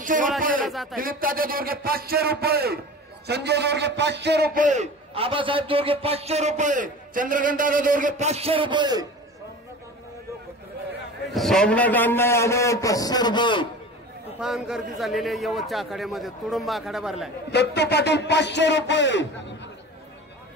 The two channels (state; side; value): normal; both; correlation 0.36